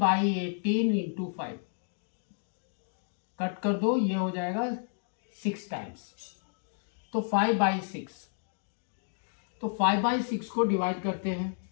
18 into 5, cut कर दो, ये हो जाएगा 6 टाइम्स, तो 5/6, तो 5/6 को डिवाइड करते हैं,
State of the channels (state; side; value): silent; right; digital silence